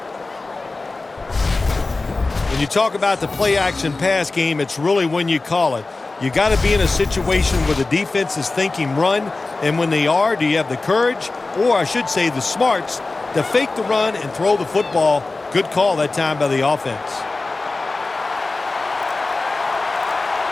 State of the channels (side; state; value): right; quieter; 3.5 dB